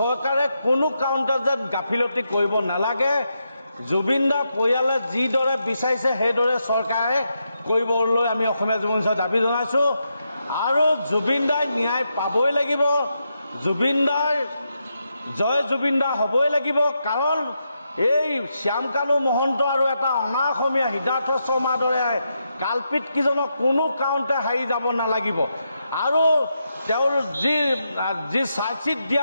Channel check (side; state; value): both; inverted; correlation -0.84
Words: কোনো কাৰণতে যেন গাফিলতি কৰিব নালাগে। জুবিন দাৰ পৰিয়ালে যিদৰে বিচাৰিছে সেইদৰে চৰকাৰে কৰিবলৈ আমি অসমীয়া যুৱ মঞ্চই দাবী জনাইছোঁ। আৰু জুবিন দাই ন্যায় পাবই লাগিব, জুবিন দাৰ জয় জুবিন দা হ'বই লাগিব, কাৰণ এই শ্যামকানু মহন্ত আৰু এটা অনা অসমীয়া সিদ্ধাৰ্থ শৰ্মাৰ দৰে কালপিত কিজনক কোনো কাৰণতে হাৰি যাব নালাগিব। আৰু তেওঁৰ যি চাৰ্জশ্বিট